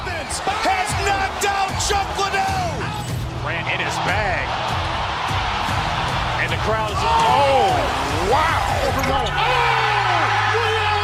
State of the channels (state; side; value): identical; both; correlation 1.00